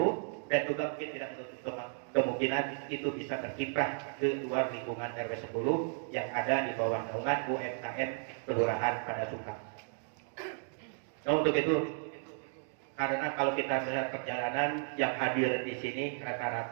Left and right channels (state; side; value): silent; left; 55 dB below the other